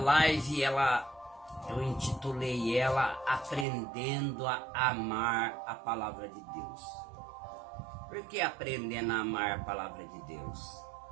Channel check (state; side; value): drops out; left; at 3.7 s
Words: eu intitulei ela Aprendendo a Amar a Palavra de Deus. Por que aprendendo a amar a Palavra de Deus?